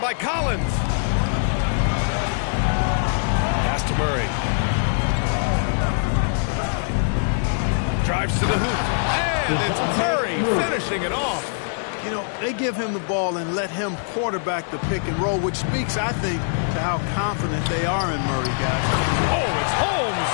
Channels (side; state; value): right; silent; digital silence